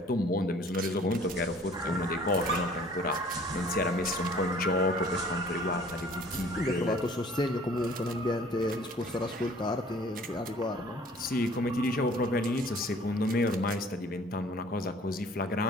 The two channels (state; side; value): normal; both; correlation 0.53